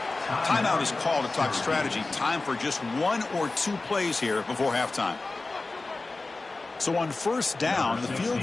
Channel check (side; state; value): right; quieter; 3.4 dB